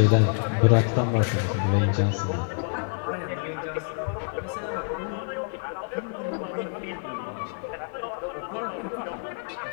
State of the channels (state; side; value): silent; right; digital silence